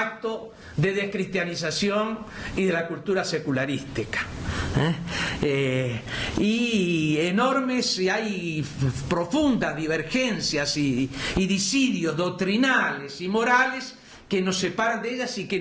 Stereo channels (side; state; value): both; identical; correlation 1.00